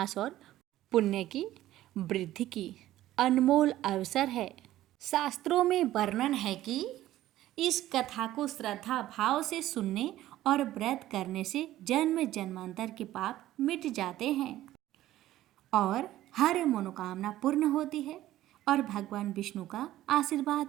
और पुण्य की वृद्धि की अनमोल अवसर है। शास्त्रों में वर्णन है कि इस कथा को श्रद्धा भाव से सुनने और व्रत करने से जन्म जन्मांतर के पाप मिट जाते हैं और हर मनोकामना पूर्ण होती है और भगवान विष्णु का आशीर्वाद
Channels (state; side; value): quieter; left; 14.4 dB